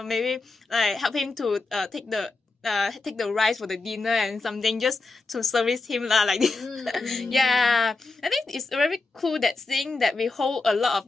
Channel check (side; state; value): right; quieter; 3.6 dB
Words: maybe like help him to take the rice for the dinner and something just to service him like this. Yeah, I think it's very cool that seeing that we hold a lot